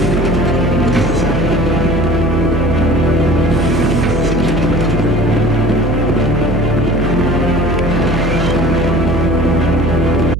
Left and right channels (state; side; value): noise; right; hum, 3 dB below the sound